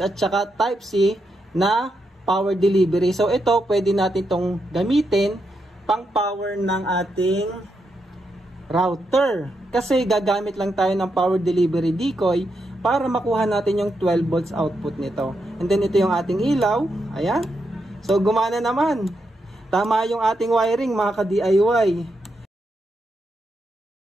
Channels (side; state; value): both; normal; correlation 0.83